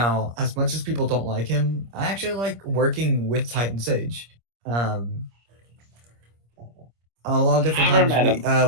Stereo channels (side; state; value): left; late; 25 ms